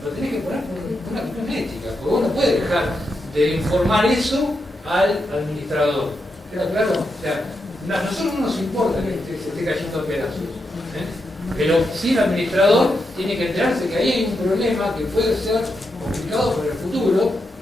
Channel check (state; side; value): normal; both; correlation 0.85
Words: lo tenés que poner por una cuestión ética, porque vos no puedes dejar de informar eso al administrador. ¿Queda claro? O sea, a nosotros no nos importa que se esté cayendo a pedazos, pero sí el administrador tiene que enterarse que ahí hay un problema que puede ser complicado para el futuro,